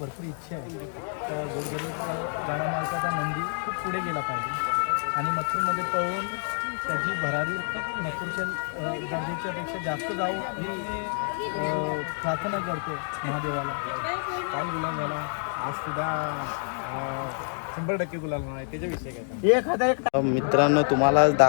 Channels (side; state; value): right; silent; 56 dB below the other